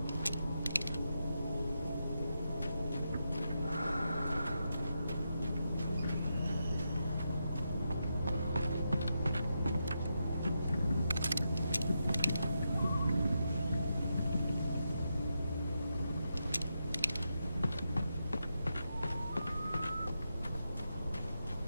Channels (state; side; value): inverted; both; correlation -0.85